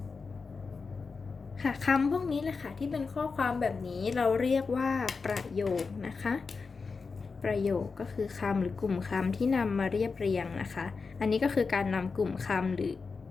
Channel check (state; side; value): quieter; right; 4.7 dB